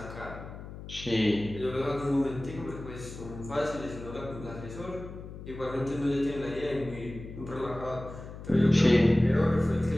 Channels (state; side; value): noise; left; hum, 12 dB below the sound